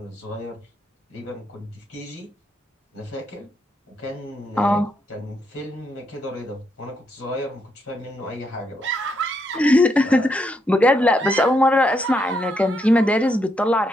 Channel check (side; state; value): both; normal; correlation 0.78